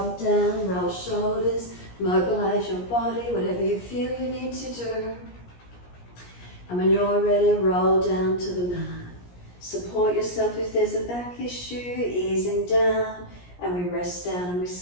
down, roll shoulders, mobilize your body, whatever you feel you need to do. And when you're ready, roll down to the mat. Support yourself if there's a back issue, easing down, and we rest down and we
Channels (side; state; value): right; late; 17 ms